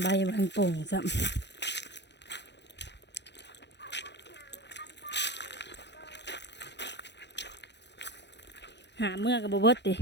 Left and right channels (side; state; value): right; late; 0.50 ms